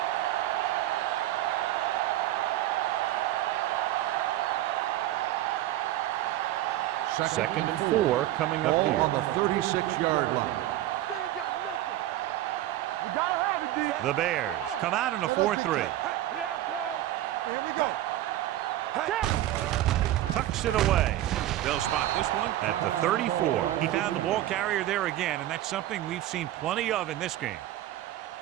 play. Second and 4 coming up Ball here. on the 36-yard line. They ain't got nothing. You gotta have it, D. The Bears come out in a 4-3. Yeah, Cole. Here we go. Tucks it away. They'll spot this one at the 34. He found the ball carrier there again, and that's something we've seen plenty of in this game.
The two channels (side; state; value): left; quieter; 14.1 dB